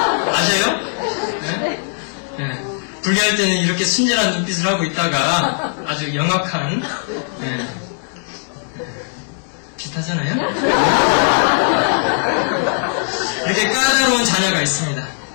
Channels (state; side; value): silent; right; digital silence